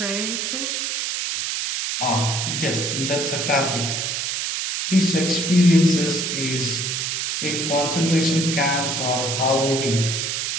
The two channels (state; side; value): noise; right; hiss, 1 dB below the sound